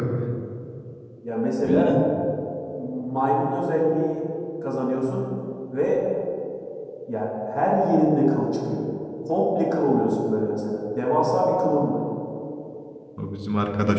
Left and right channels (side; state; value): both; identical; correlation 1.00